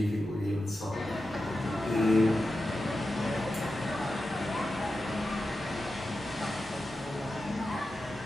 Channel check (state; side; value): normal; both; correlation 0.91